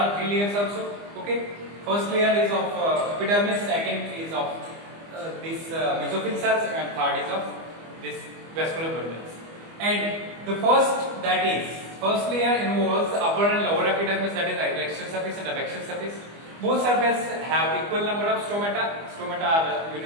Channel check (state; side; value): late; left; 25 ms